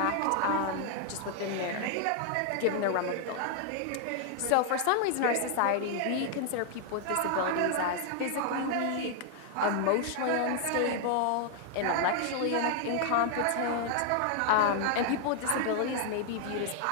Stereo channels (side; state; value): both; different; correlation 0.00